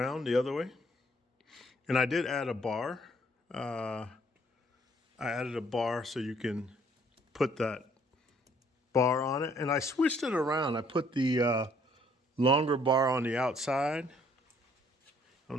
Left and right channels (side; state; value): both; normal; correlation 0.63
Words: the other way. And I did add a bar. I added a bar so you can put that bar on it. And I switched it around. I put the longer bar on the outside. I don't